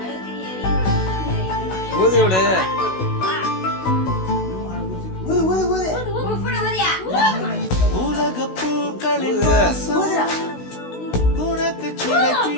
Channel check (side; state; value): right; late; 16 ms